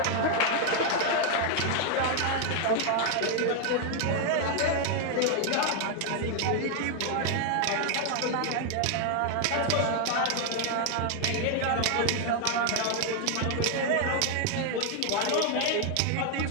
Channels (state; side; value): different; both; correlation 0.00